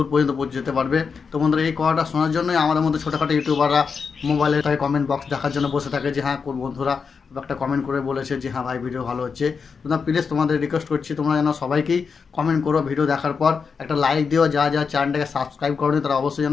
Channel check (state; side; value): quieter; right; 5.6 dB